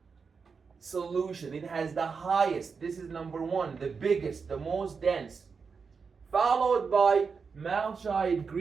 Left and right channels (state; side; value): quieter; left; 5.3 dB